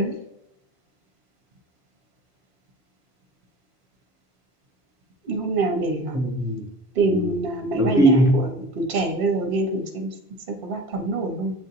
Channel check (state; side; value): normal; both; correlation 0.40